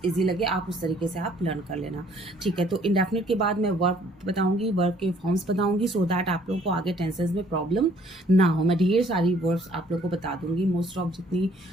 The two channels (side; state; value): both; normal; correlation 0.61